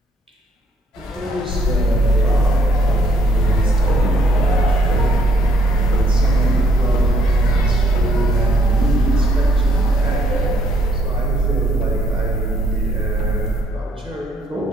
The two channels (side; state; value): both; normal; correlation 0.68